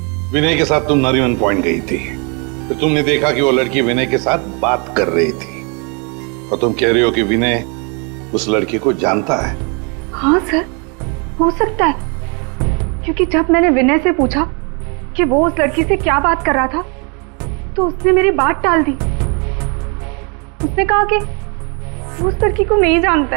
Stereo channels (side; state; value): left; quieter; 34.6 dB